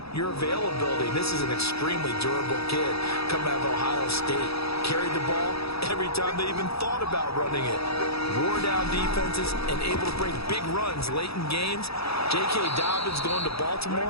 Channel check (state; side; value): late; right; 0.77 ms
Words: your availability. This is an extremely durable kid coming out of Ohio State. Carried the ball every time they even thought about running it. Wore down defenses and able to break big runs late in games. J.K. Dobbins going to